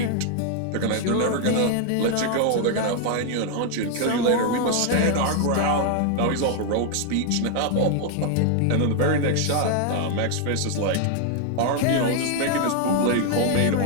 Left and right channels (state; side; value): different; both; correlation 0.00